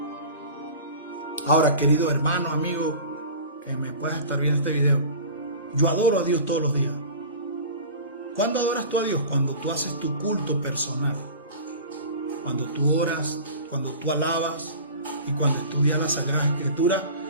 Ahora, querido hermano, amigo, que me puedas estar viendo este video, yo adoro a Dios todos los días. ¿Cuándo adoras tú a Dios? Cuando tú haces tu culto personal, cuando tú oras, cuando tú alabas y cuando estudias las Sagradas Escrituras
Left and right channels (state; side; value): inverted; both; correlation -0.37